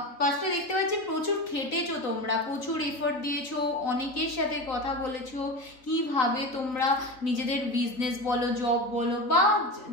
ফার্স্টে দেখতে পাচ্ছি প্রচুর খেটেছো তোমরা, প্রচুর এফোর্ট দিয়েছো, অনেকের সাথে কথা বলেছো কিভাবে তোমরা নিজেদের বিজনেস বলো, জব বলো বা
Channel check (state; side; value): late; right; 3.9 ms